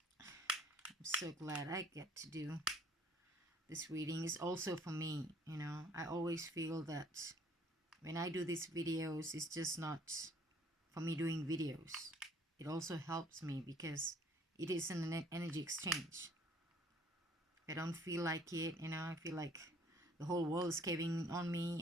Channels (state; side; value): normal; both; correlation 0.58